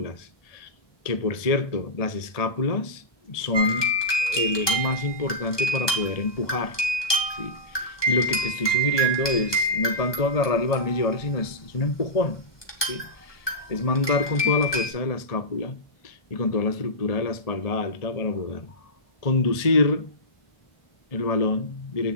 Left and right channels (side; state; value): right; late; 1.2 ms